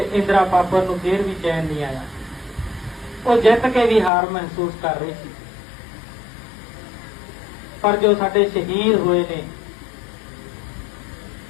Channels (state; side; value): drops out; right; at 4.1 s